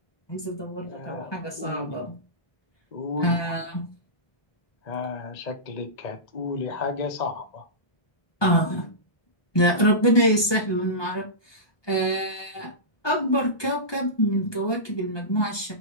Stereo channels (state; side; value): late; right; 1.2 ms